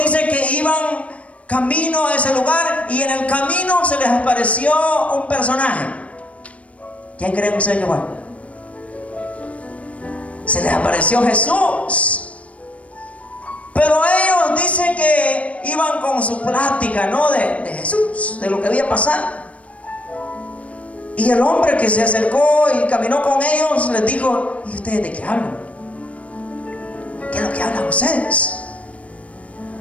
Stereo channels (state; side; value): late; right; 0.065 ms